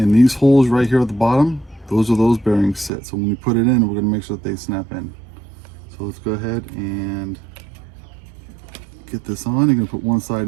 these holes right here at the bottom, those are those bearings sit. So when you put it in, we're going to make sure that they snap in. So let's go ahead and get this on. You're going to put one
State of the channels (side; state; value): left; drops out; at 2.9 s